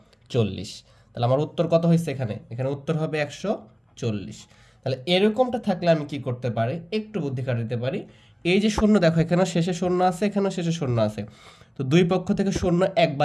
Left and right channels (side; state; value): both; identical; correlation 1.00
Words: তাহলে আমার উত্তর কত হয়েছে এখানে, এখানে উত্তর হবে 140। তাহলে এরকমটা থাকলে আমি কি করতে পারি, একটু বুদ্ধি খাটাতে পারি। এই যে শূন্য দেখো, এখানে শেষে শূন্য আছে, এখানেও শেষে শূন্য আছে, তো দুই পক্ষ থেকে শূন্য